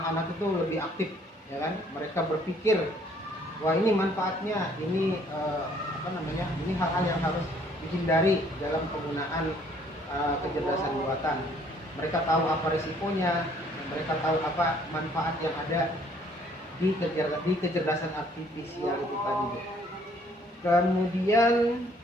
itu lebih aktif, ya kan? Mereka berpikir, wah ini manfaatnya, ini ini hal-hal yang harus dihindari dalam penggunaan kecerdasan buatan. Mereka tahu apa risikonya, mereka tahu apa manfaat yang ada di kecerdasan artifisial itu tadi. Kemudian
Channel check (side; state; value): both; normal; correlation 0.62